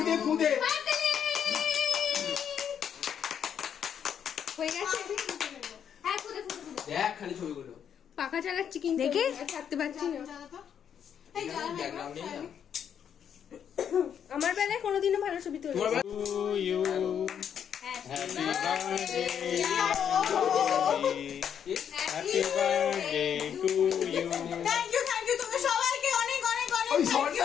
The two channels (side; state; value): right; quieter; 8.4 dB